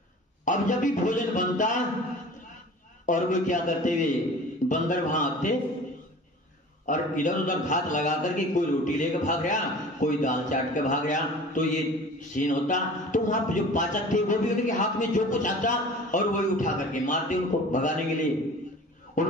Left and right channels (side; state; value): both; normal; correlation 0.42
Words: अब जब भी भोजन बनता और वो क्या करते हुए बंदर वहां आते और इधर उधर घात लगा करके कोई रोटी लेकर भाग गया, कोई दाल चाट के भाग गया, तो ये सीन होता। तो वहां जो पाचक थे वो भी उनके हाथ में जो कुछ आता और वही उठा करके मारते उनको भगाने के लिए।